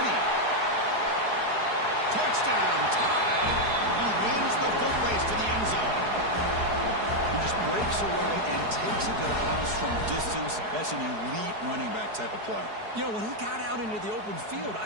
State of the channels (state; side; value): late; left; 4.7 ms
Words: Touchdown, tie. He wins the foot race to the end zone. He just breaks away and takes it to the house from distance. That's an elite running back type of play. You know, when he got out into the open field,